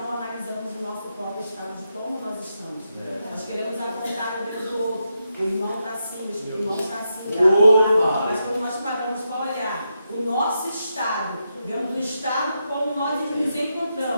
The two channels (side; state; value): both; inverted; correlation -0.84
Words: analisamos o nosso próprio estado de como nós estamos. Nós queremos apontar o dedo do outro. O irmão está assim, o irmão está assim. Mas quando nós paramos para olhar o nosso estado, vemos o estado como nós nos